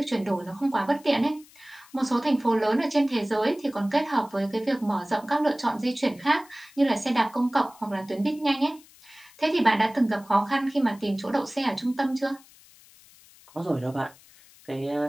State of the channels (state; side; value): noise; left; hiss, 25 dB below the sound